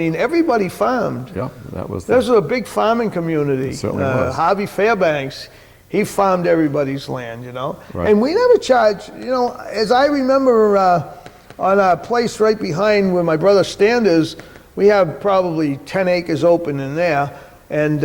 everybody farmed. Yeah, that was. There's a big farming community. It certainly was. Harvey Fairbanks, he farmed everybody's land, you know. Right. And we never charged, you know, as I remember on a place right behind where my brother's stand is, we have probably 10 acres open in there. And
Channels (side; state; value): both; identical; correlation 1.00